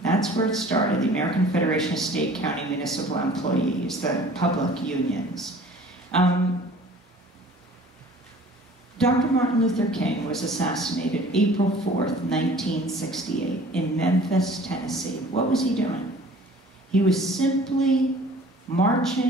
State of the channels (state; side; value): normal; both; correlation 0.48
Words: That's where it started, the American Federation of State, County, Municipal Employees, the public unions. Dr. Martin Luther King was assassinated April 4th, 1968, in Memphis, Tennessee. What was he doing? He was simply